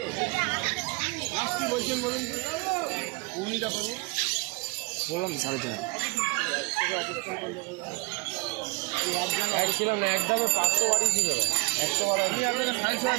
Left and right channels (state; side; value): quieter; left; 29.7 dB